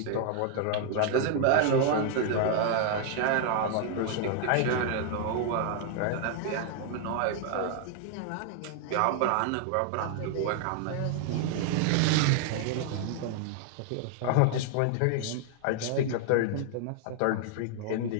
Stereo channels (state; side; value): different; both; correlation 0.00